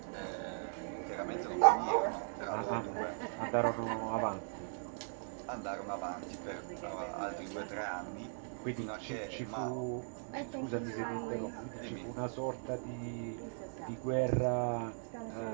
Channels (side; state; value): left; silent; digital silence